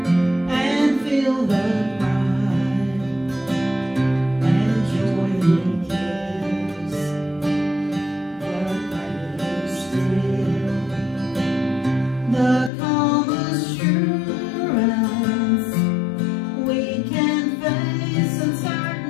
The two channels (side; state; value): right; drops out; at 12.7 s